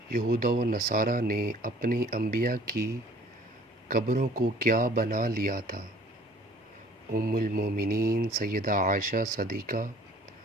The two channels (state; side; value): normal; both; correlation 0.52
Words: یہود و نصارہ نے اپنی انبیاء کی قبروں کو کیا بنا لیا تھا؟ ام المومنین سیدہ عائشہ صدیقہ